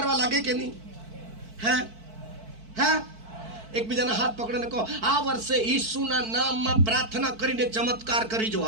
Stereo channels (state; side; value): late; left; 4.5 ms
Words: લાગે કે નહીં? હે? હે? એકબીજાના હાથ પકડીને કહો, આ વર્ષે ઈસુના નામમાં પ્રાર્થના કરીને ચમત્કાર કરીજો.